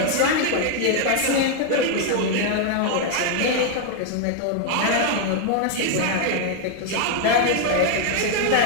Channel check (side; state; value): both; different; correlation 0.00